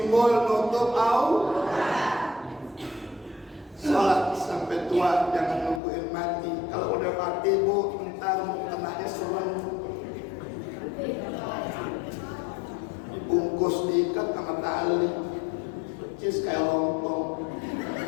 nutup aurat. Sholat sampai tua, jangan nungguin mati. Kalau udah mati Bu, ntar mukenanya serem, dibungkus diikat sama tali, percis kayak lontong.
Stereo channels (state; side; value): drops out; right; at 5.8 s